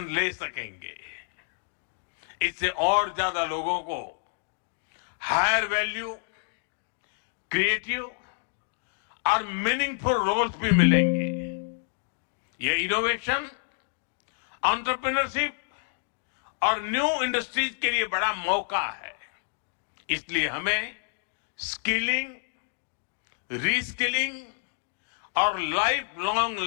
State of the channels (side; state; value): right; silent; digital silence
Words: ले सकेंगे। इससे और ज्यादा लोगों को हायर वैल्यू, क्रिएटिव और मीनिंगफुल रोल्स भी मिलेंगे। ये इनोवेशन, एंटरप्रेन्योरशिप और न्यू इंडस्ट्रीज के लिए बड़ा मौका है। इसलिए हमें स्किलिंग, रीस्किलिंग और लाइफ लॉन्ग